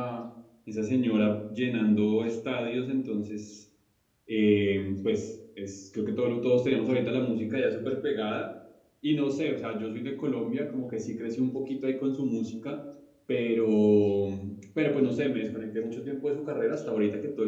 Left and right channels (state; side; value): identical; both; correlation 1.00